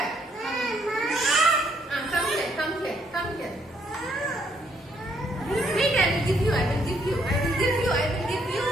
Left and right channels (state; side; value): normal; both; correlation 0.70